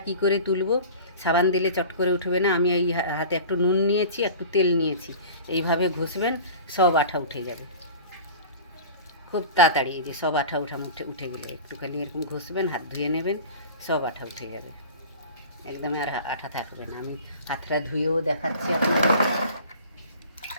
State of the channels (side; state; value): both; inverted; correlation -0.39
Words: কি করে তুলব, সাবান দিলে চট করে উঠবে না। আমি এই হাতে একটু নুন নিয়েছি, একটু তেল নিয়েছি, এইভাবে ঘষবেন, সব আঠা উঠে যাবে খুব তাড়াতাড়ি। এই যে সব আঠা উঠে গেলো, একটুখানি এরকম ঘষবেন, হাত ধুয়ে নেবেন, সব আঠা উঠে যাবে, একদম আর আঠা থাকবে না। আমি হাতটা ধুয়েও দেখাচ্ছি আপনাকে।